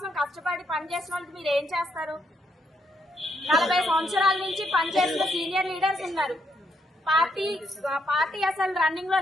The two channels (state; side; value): normal; both; correlation 0.76